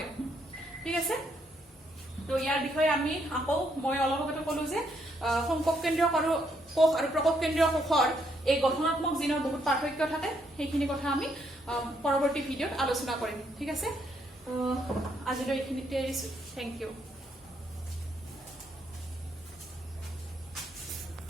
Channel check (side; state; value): both; normal; correlation 0.74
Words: ঠিক আছে তো ইয়াৰ বিষয়ে আমি আকৌ মই অলপ আগতে ক'লো যে সংকক কেন্দ্ৰীয় কোষ আৰু প্ৰকক কেন্দ্ৰীয় কোষৰ এই গঠনাত্মক জিনৰ বহুত পাৰ্থক্য থাকে সেইখিনি কথা আমি পৰৱৰ্তী ভিডিঅ'ত আলোচনা কৰিম ঠিক আছে আজিলৈ এইখিনিতে এৰিছো থেংক ইউ